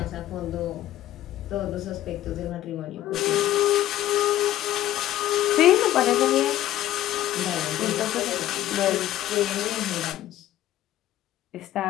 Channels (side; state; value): right; quieter; 13.6 dB